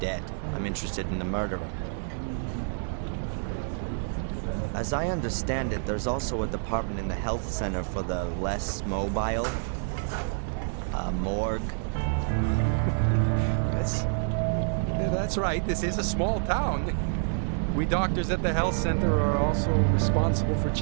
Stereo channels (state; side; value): silent; left; digital silence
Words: I'm interested in the murderer. As I understand it, there's also a department in the health center for the less mobile. A morgue. Yes. That's right. This is a small town. We doctors at the health center are also responsible for